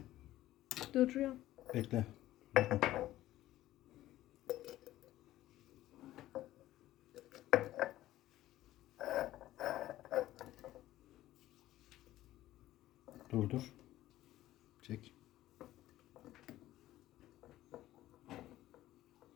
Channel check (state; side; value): quieter; right; 14.8 dB